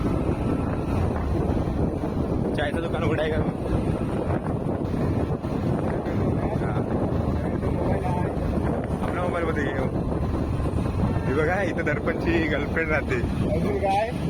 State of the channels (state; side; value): identical; both; correlation 1.00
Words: चायचं दुकान उघडाय का आपल्या मोबाईल मध्ये हे बघा इथं दर्पणची गर्लफ्रेंड राहते काय